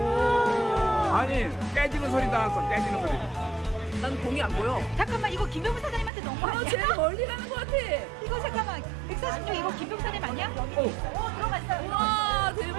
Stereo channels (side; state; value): left; drops out; at 6.1 s